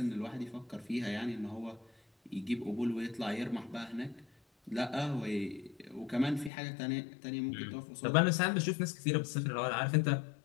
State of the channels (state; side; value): drops out; right; at 6.5 s